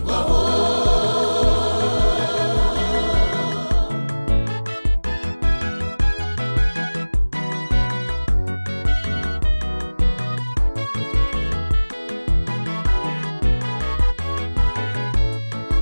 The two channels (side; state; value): both; inverted; correlation -1.00